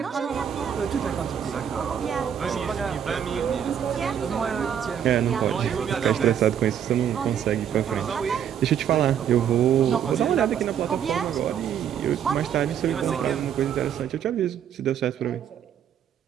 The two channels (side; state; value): left; quieter; 8.9 dB